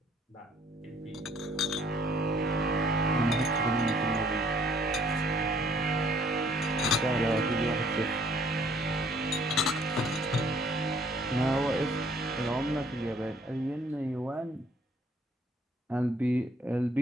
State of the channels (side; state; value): both; normal; correlation 0.61